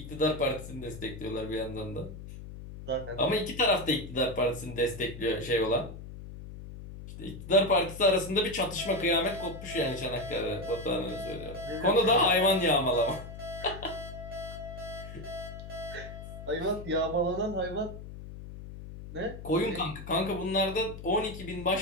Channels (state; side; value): noise; left; hum, 12 dB below the sound